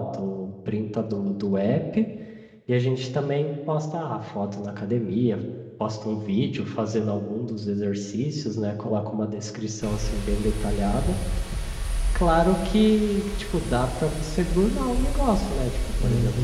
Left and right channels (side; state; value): both; identical; correlation 1.00